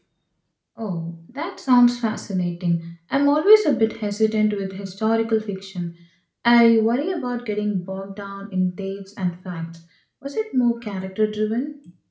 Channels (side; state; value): both; identical; correlation 1.00